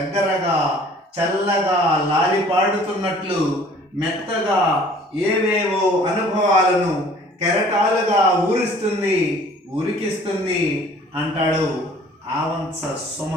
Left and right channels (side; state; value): both; normal; correlation 0.52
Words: చల్లగా లాలిపాడుతున్నట్లు మెత్తగా ఏవేవో అనుభవాలను కెరటాలుగా ఉరికిస్తుంది అంటాడు ఆవంస